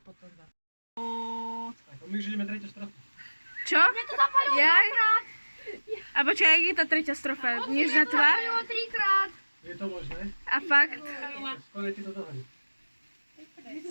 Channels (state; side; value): inverted; both; correlation -1.00